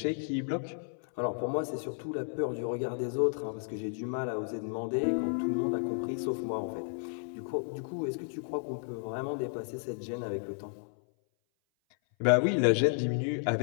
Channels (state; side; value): silent; right; 56 dB below the other